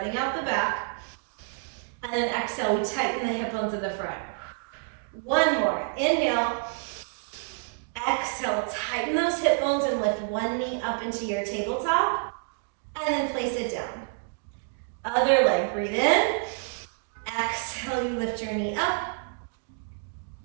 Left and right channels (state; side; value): silent; left; 58 dB below the other